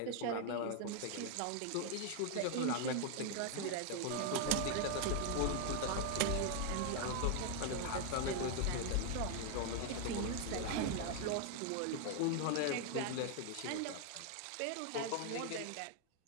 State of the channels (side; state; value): both; different; correlation 0.00